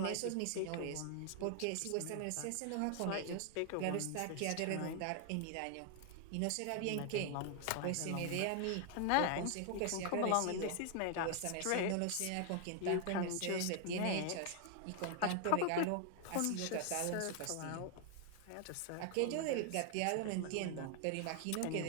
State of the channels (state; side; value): different; both; correlation 0.00